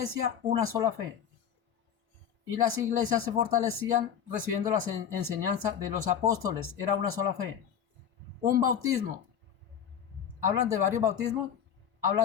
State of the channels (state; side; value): quieter; right; 8.4 dB